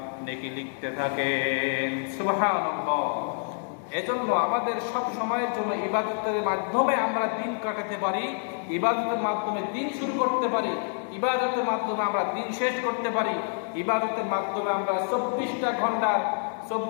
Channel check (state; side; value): silent; right; 60 dB below the other